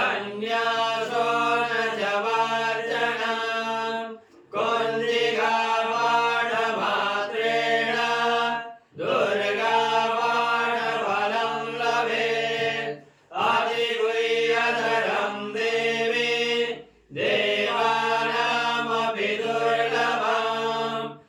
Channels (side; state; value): both; identical; correlation 1.00